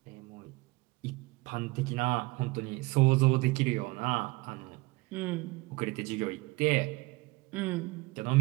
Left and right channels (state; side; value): quieter; left; 23.4 dB